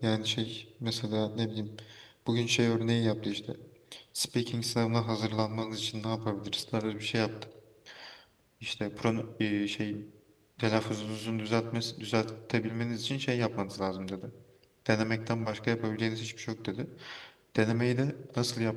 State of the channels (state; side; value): identical; both; correlation 1.00